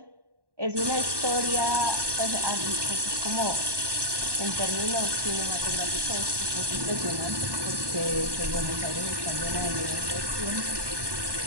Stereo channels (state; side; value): late; left; 1.2 ms